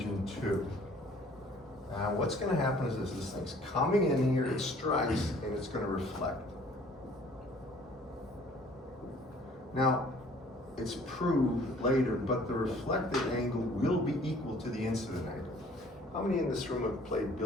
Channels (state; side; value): normal; both; correlation 0.55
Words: 2. Now what's going to happen is this thing's coming in here, it strikes, and it's going to reflect. Now, it's proved later, but the reflected angle will be equal to the incident angle. How many in this room have played